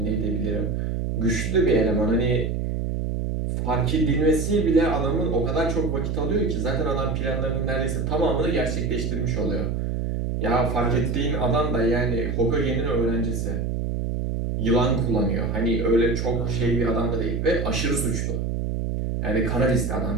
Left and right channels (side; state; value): right; noise; hum, 1 dB below the sound